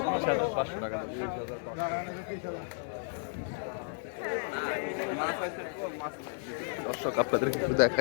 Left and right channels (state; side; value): silent; right; 56 dB below the other